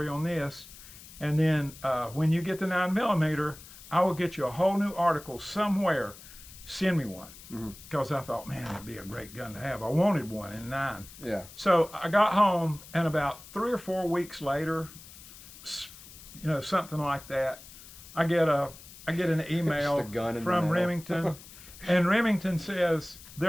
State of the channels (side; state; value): left; noise; hiss, 18 dB below the sound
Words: on this, and then when you get the 9mm, I will get you a whole new article somewhere. Send me one, because I thought, man, it'd be a great gun to have. I wanted one in 9. Yeah. So I got home, and about 3 or 4 weeks later, you know, something like that, I get an email from Remington, and Remington says